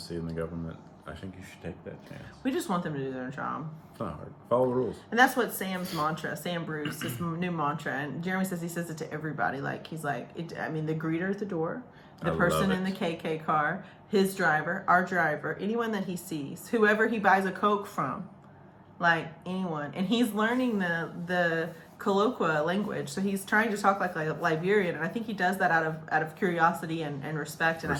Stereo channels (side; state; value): both; identical; correlation 1.00